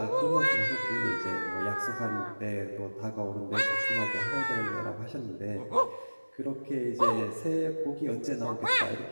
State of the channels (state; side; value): inverted; both; correlation -1.00